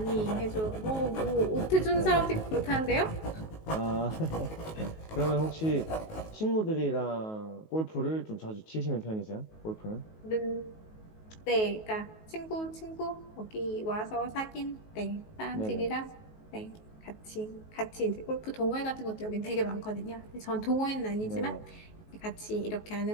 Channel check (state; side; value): late; right; 19 ms